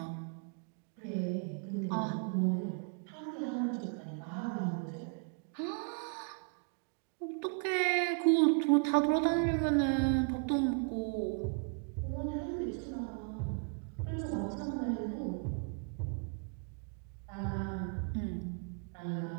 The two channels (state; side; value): quieter; left; 39.9 dB